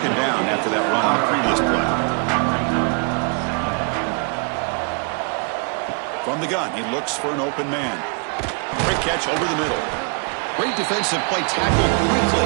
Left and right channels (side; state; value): left; quieter; 37.0 dB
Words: down after that run on the previous play. From the gun, he looks for an open man. Quick catch over the middle. Great defensive play, tackled quickly.